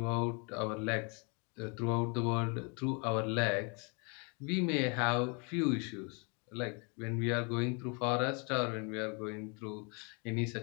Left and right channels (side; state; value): right; quieter; 33.8 dB